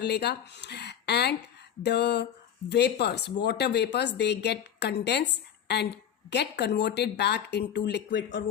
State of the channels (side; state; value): right; quieter; 9.2 dB